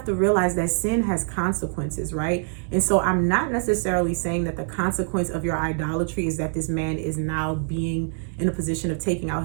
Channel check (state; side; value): silent; left; 56 dB below the other